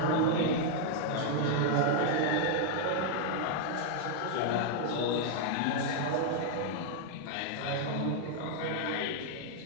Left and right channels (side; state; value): both; different; correlation 0.00